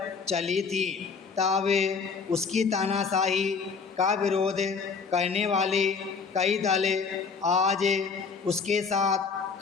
चली थी। तब उसकी तानाशाही का विरोध करने वाले कई दल आज उसके साथ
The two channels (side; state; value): right; quieter; 5.2 dB